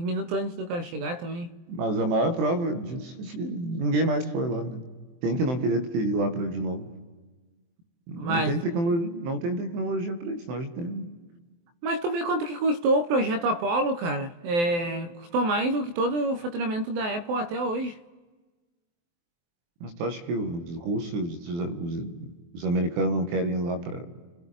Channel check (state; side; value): late; left; 23 ms